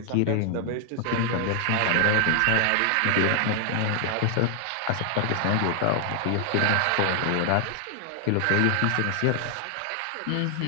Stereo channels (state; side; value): different; both; correlation 0.00